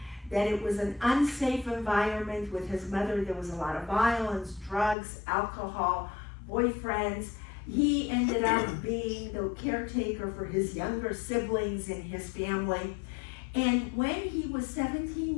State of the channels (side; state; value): right; drops out; at 5.0 s